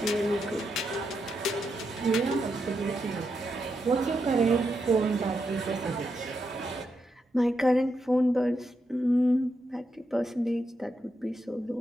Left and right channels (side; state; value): both; normal; correlation 0.83